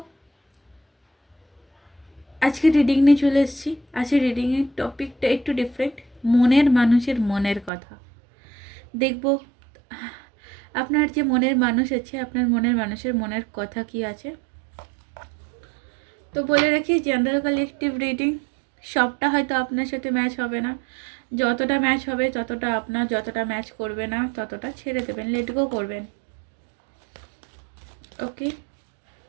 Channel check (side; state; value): left; drops out; at 7.7 s